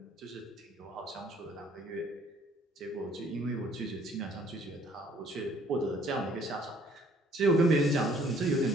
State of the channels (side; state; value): both; normal; correlation 0.60